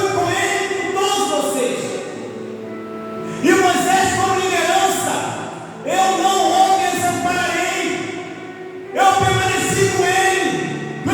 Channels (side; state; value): both; identical; correlation 1.00